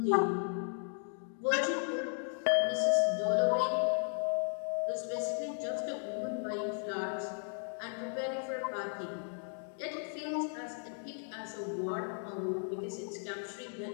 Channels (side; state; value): right; silent; 54 dB below the other